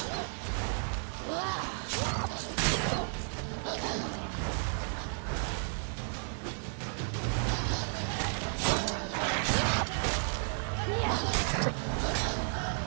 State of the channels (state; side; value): silent; left; 56 dB below the other